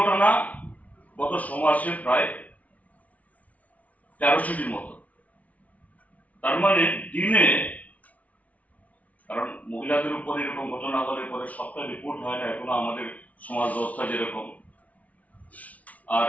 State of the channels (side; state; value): right; late; 0.070 ms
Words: গত সমাজে প্রায় 1300টির মতো। তার মানে দিনে, কারণ মহিলাদের উপর এরকম ঘটনা হলে পরে সবটা রিপোর্ট হয় না এখনো আমাদের সমাজ ব্যবস্থা যেরকম, আর